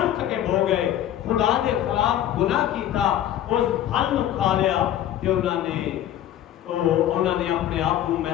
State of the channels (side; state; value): right; quieter; 11.8 dB